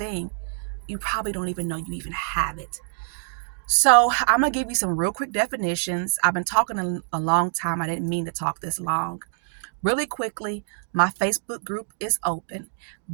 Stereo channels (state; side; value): silent; left; digital silence